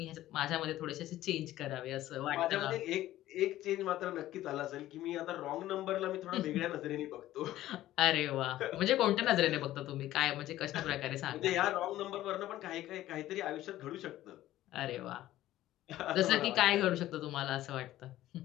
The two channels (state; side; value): quieter; right; 14.5 dB